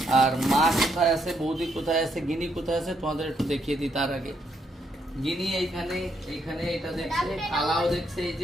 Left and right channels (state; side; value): normal; both; correlation 0.76